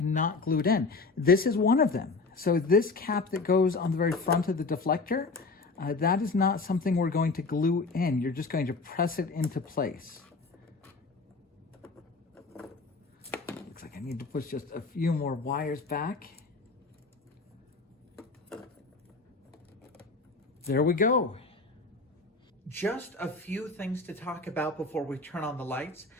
not glued in. This is one of them. So this cap that goes on the very front of the deflector, that is not something we're going to glue in. You're just going to press it into place. Looks like I need to push just a few more wires back. There we go. Just a few things to talk about before we turn on the lights.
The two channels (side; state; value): right; quieter; 3.9 dB